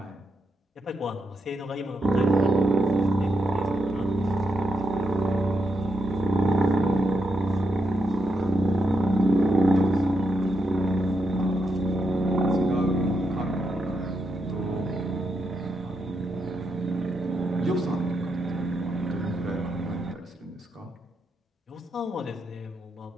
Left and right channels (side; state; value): both; normal; correlation 0.83